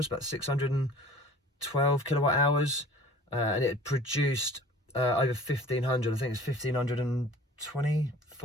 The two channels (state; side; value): normal; both; correlation 0.46